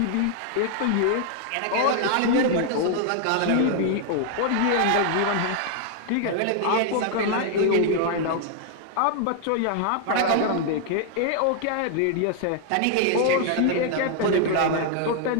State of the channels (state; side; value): different; both; correlation 0.00